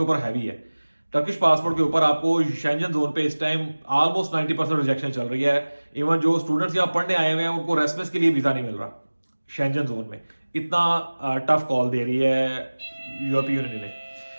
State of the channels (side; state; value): both; inverted; correlation -1.00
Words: ऊपर हैवी है। टर्किश पासपोर्ट के ऊपर आपको शेंजन जोन पे इस टाइम ऑलमोस्ट 90% रिजेक्शन चल रही है। इवन जो स्टूडेंट्स यहाँ पढ़ने आए हुए हैं उनको रेसिडेंस के लिए वीजा नहीं मिल रहा शेंजन जोन में। इतना टफ कॉल दे रही है यूरोपीय यूनियन ने।